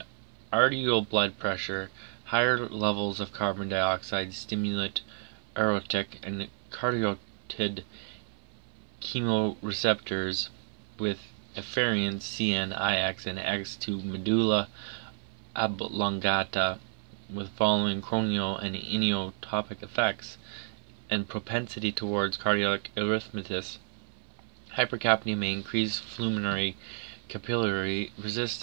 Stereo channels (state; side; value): silent; left; 57 dB below the other